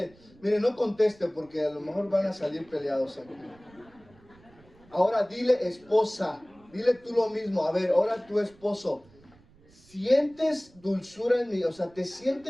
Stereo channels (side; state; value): right; noise; rumble, 28 dB below the sound